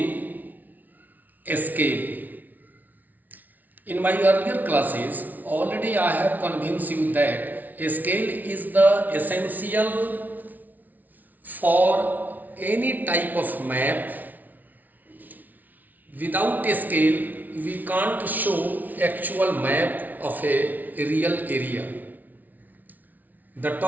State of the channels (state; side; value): late; left; 0.079 ms